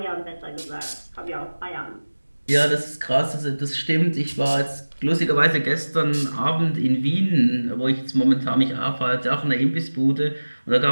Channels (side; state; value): both; inverted; correlation -1.00